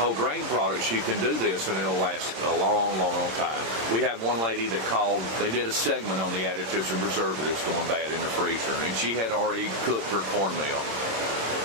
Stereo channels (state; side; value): late; left; 26 ms